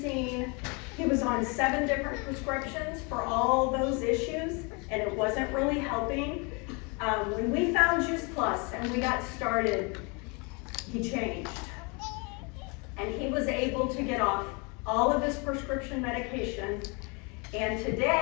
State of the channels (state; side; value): quieter; right; 31.2 dB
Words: He was on 7 different prescriptions for all those issues, and it wasn't really helping. When we found Juice Plus and we got started, he changed. And he was able to get off all of his prescription medication. And